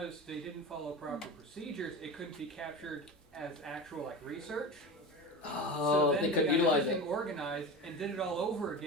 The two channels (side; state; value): both; normal; correlation 0.27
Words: they didn't follow proper procedures, it couldn't be captured as actual like research. Oh, so then they could got utilize everything it. organized and did it all over